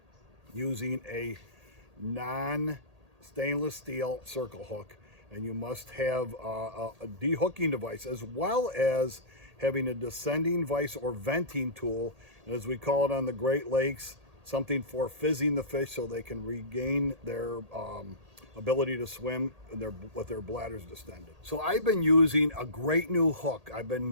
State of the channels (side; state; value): left; late; 1.8 ms